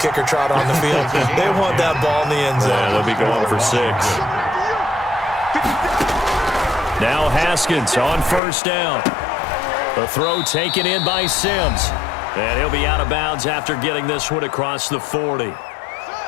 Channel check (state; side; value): drops out; right; at 8.4 s